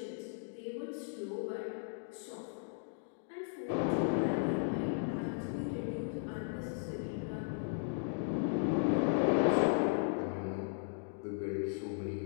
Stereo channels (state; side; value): silent; right; digital silence